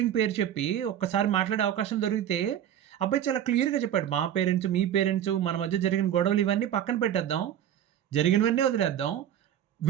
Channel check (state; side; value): quieter; left; 10.5 dB